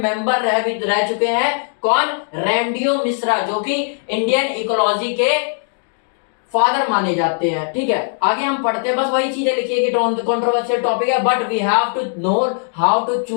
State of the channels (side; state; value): right; silent; 62 dB below the other